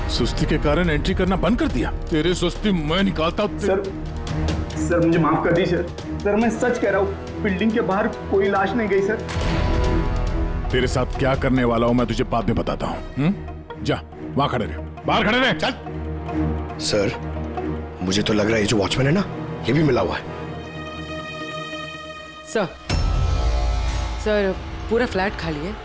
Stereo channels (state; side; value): identical; both; correlation 1.00